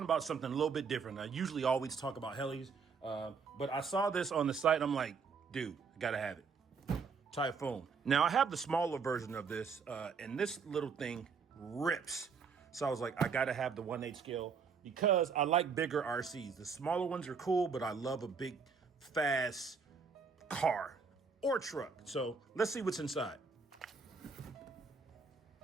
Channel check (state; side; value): quieter; left; 5.4 dB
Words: about something a little bit different. I usually always talk about helis, but I saw this on the site. I'm like, dude, I gotta have it. Typhoon. Now, I have the smaller version of this, and this little thing rips. So I was like, I gotta have the 1/8 scale because I like bigger RCs. The smaller ones are cool, but I love a big, fast car or truck. So let's see what's inside.